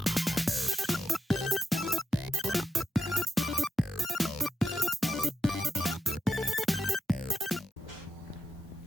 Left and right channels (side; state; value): both; normal; correlation 0.88